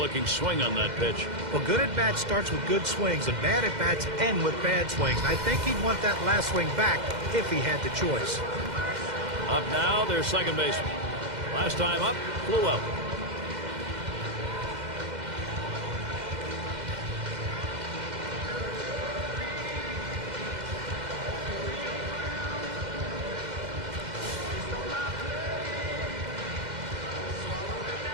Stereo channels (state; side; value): late; left; 2.1 ms